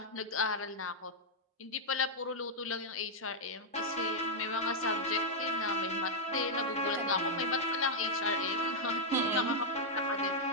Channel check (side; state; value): both; normal; correlation -0.04